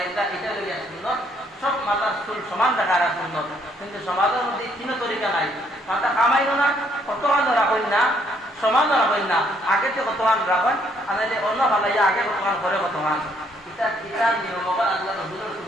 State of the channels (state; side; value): normal; both; correlation 0.69